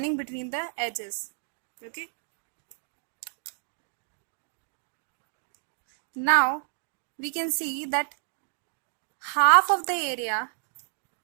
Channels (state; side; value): silent; left; digital silence